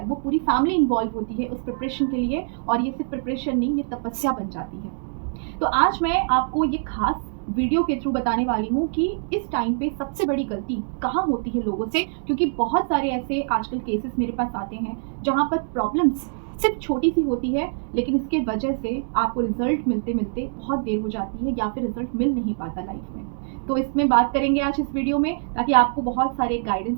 वो पूरी फैमिली इन्वॉल्व होती है उस प्रिपरेशन के लिए, और ये सिर्फ प्रिपरेशन नहीं, ये तपस्या बन जाती है। तो आज मैं आपको ये खास वीडियो के थ्रू बताने वाली हूँ कि इस टाइम पे सबसे बड़ी गलती कहाँ होती है लोगों से, क्योंकि बहुत सारे ऐसे आजकल केसेस मेरे पास आते हैं जहाँ पर प्रॉब्लम्स सिर्फ छोटी सी होती है, लेकिन इसके वजह से आपको रिजल्ट मिलते मिलते बहुत देर हो जाती है, या फिर रिजल्ट मिल नहीं पाता लाइफ में। तो इसमें बात करेंगे आज इस वीडियो में, ताकि आपको बहुत सारे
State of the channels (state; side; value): silent; left; digital silence